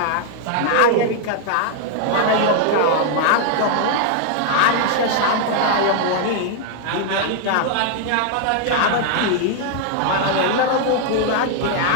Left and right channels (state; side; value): different; both; correlation 0.00